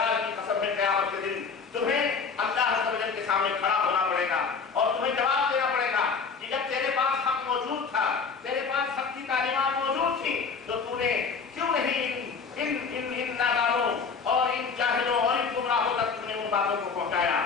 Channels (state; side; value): quieter; right; 5.4 dB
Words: کی قسم ہے، قیامت کے دن تمہیں اللہ عز و جل کے سامنے کھڑا ہونا پڑے گا اور تمہیں جواب دینا پڑے گا کہ جب تیرے پاس حق موجود تھا، تیرے پاس حق کی تعلیمات موجود تھی، تو تو نے کیوں نہیں ان نادانوں اور ان جاہلوں اور ان گمراہوں تک تم نے ان باتوں کو پہنچایا،